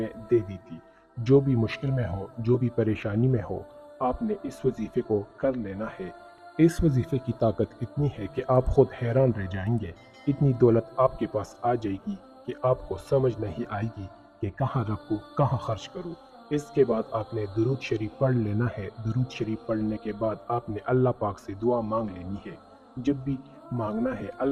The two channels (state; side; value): identical; both; correlation 1.00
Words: دے دی تھی۔ جو بھی مشکل میں ہو، جو بھی پریشانی میں ہو، آپ نے اس وظیفے کو کر لینا ہے۔ اس وظیفے کی طاقت اتنی ہے کہ آپ خود حیران رہ جائیں گے۔ اتنی دولت آپ کے پاس آ جائے گی کہ آپ کو سمجھ نہیں آئے گی کہ کہاں رکھوں، کہاں خرچ کروں۔ اس کے بعد آپ نے درود شریف پڑھ لینا ہے۔ درود شریف پڑھنے کے بعد آپ نے اللہ پاک سے دعا مانگ لینی ہے۔ جب بھی مانگنا ہے